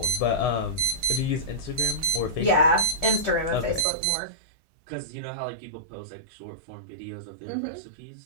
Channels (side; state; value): left; drops out; at 3.9 s